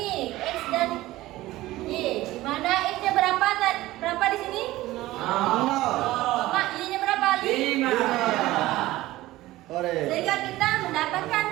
X dan Y. Di mana X-nya berapa? Berapa di sini? 0. Y-nya berapa? 5. Sehingga kita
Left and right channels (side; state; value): left; quieter; 17.1 dB